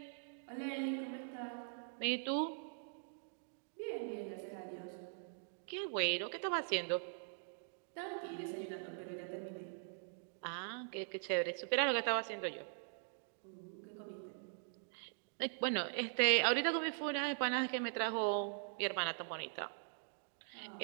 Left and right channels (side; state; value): left; silent; digital silence